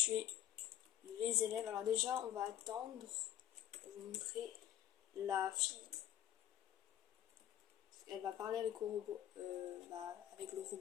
les élèves. Alors déjà, on va attendre pour vous montrer la fille. Elle va parler avec le robot, avec le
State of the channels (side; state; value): right; quieter; 11.8 dB